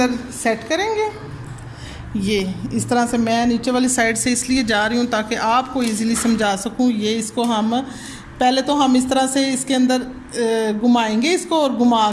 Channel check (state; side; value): identical; both; correlation 1.00